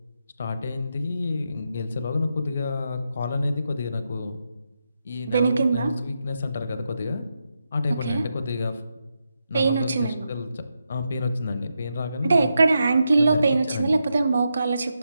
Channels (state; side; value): inverted; both; correlation -0.85